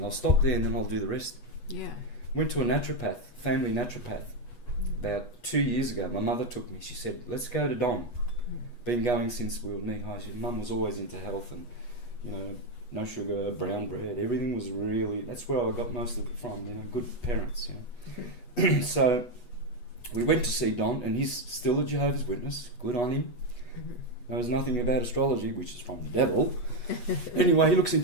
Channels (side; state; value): right; late; 8.2 ms